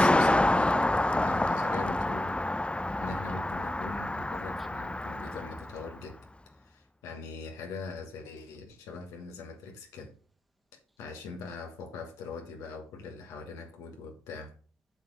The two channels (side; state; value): both; normal; correlation 0.91